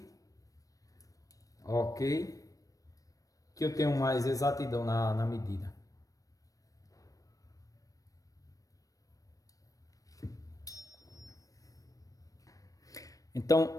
Ok. Que eu tenho mais exatidão na medida. Então,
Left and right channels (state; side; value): late; right; 0.16 ms